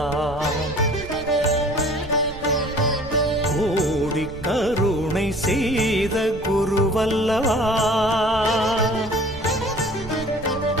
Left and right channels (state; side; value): noise; right; rumble, 14 dB below the sound